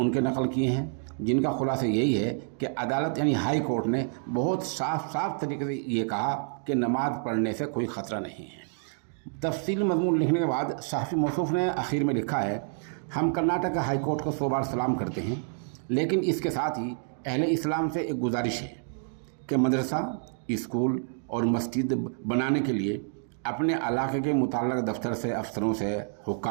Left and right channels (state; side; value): silent; left; 59 dB below the other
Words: नकल किए हैं, जिनका खुलासा यही है कि अदालत यानी हाई कोर्ट ने बहुत साफ तरीके से ये कहा कि नमाज़ पढ़ने से कोई ख़तरा नहीं है। तफसील मज़मून लिखने के बाद सहाफ़ी मौसूफ़ ने आखिर में लिखा है, हम कर्नाटक हाई कोर्ट को 100 बार सलाम करते हैं, लेकिन इसके साथ ही अहले इस्लाम से एक गुजारिश है कि मदरसा, स्कूल और मस्जिद बनाने के लिए अपने इलाके के मुतल्लिक़ दफ्तर से, अफसरों से,